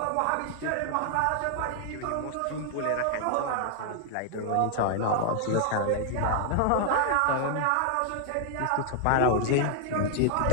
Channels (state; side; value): different; both; correlation 0.00